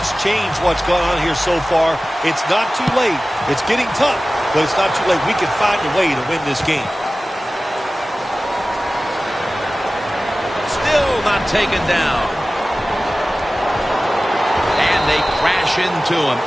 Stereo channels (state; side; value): normal; both; correlation 0.97